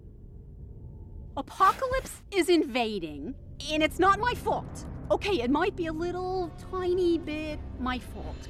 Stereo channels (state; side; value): identical; both; correlation 1.00